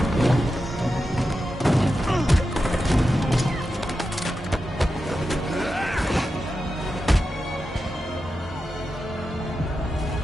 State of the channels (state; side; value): normal; both; correlation 0.90